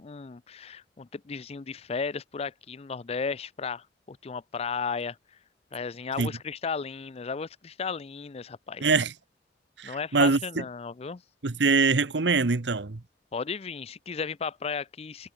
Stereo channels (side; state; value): both; normal; correlation 0.15